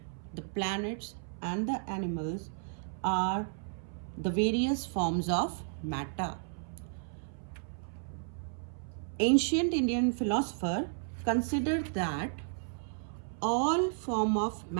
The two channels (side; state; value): left; silent; 56 dB below the other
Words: the planets, and the animals are the various forms of matter. Ancient Indian philosopher considered that all form of